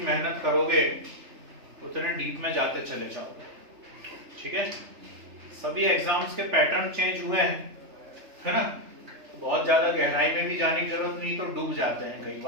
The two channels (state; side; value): late; left; 3.3 ms